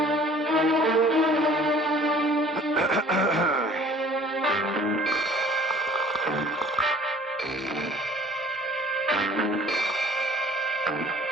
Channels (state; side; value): normal; both; correlation 0.51